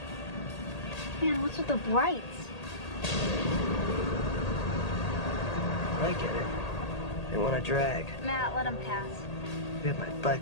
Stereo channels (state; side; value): late; right; 1.8 ms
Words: Man, what's with the brights? I get it. They want to drag. Matt, let him pass. If we had my